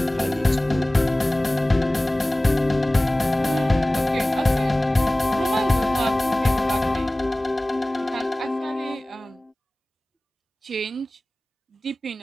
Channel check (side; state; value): both; normal; correlation 0.98